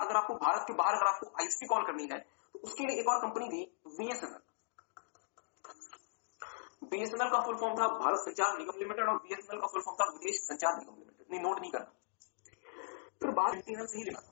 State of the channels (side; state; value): right; silent; digital silence